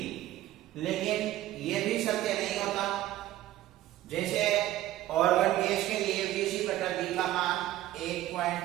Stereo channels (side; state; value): left; quieter; 14.5 dB